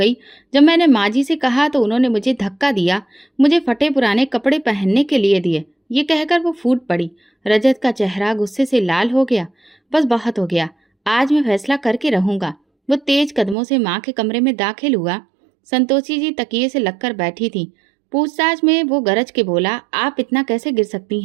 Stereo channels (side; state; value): left; drops out; at 13.6 s